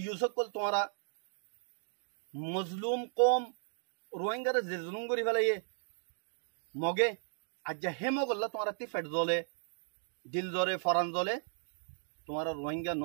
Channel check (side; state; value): left; silent; digital silence